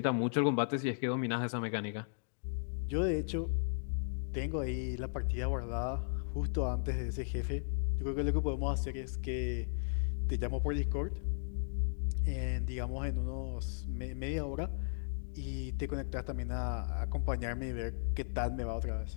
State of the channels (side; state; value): right; silent; digital silence